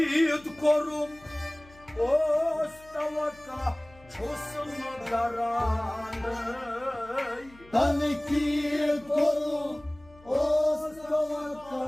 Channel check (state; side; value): noise; left; hum, 24 dB below the sound